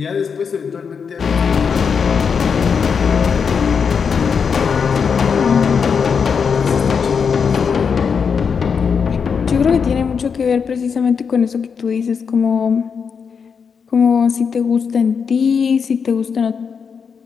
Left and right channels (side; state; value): right; quieter; 6.2 dB